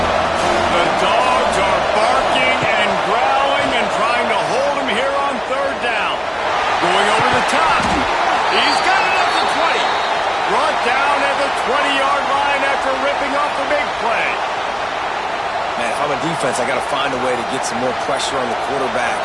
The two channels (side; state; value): both; identical; correlation 1.00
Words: The Dogs are barking and growling and trying to hold him here on third down. Going over the top. He's got it at the 20. Brought down at the 20-yard line after ripping off the big play. Man, if I'm a defense, I got to find a way to get some more pressure on the quarterback